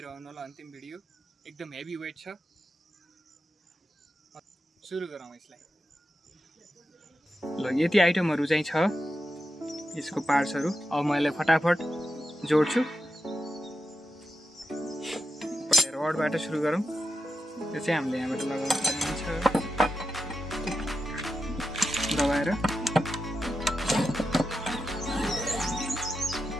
रहनु होला अन्तिम भिडियो। एकदम हेभी वेट छ। सुरु गरौँ यसलाई। ल यति आइटमहरु चाहिँ छ यसको पार्ट्सहरु। अब म यसलाई फटाफट जोड्छु। रडबाट सुरु गरौँ। यो चाहिँ हामीले यहाँबाट लगाउन सकिन्छ दबाएर।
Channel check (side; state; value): both; normal; correlation 0.89